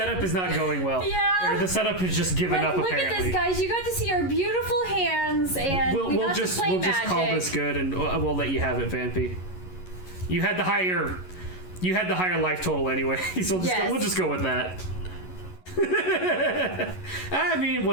is not going well. Yeah. Or the setup is just given Like, up. look Apparently. at this, guys. You got to see our beautiful hands, and we We'll got just to play magic. call this good, and we'll let you have it, Vampy. You had the higher life total anyway, so Yes. we'll just go with that. I mean,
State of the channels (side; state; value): right; late; 11 ms